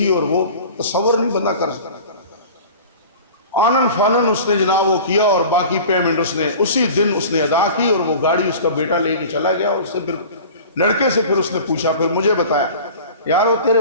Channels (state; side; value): inverted; both; correlation -0.40